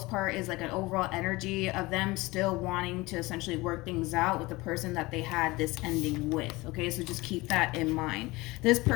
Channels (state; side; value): quieter; right; 21.7 dB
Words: part is like an overall energy of them still wanting to essentially work things out with the person that they had this ending with. Okay, so just keep that in mind. This